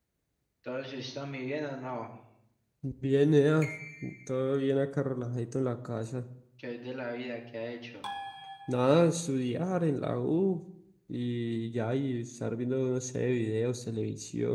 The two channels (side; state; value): both; identical; correlation 1.00